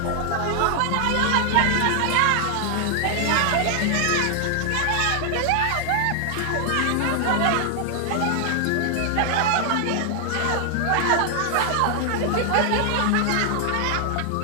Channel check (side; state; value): both; different; correlation 0.00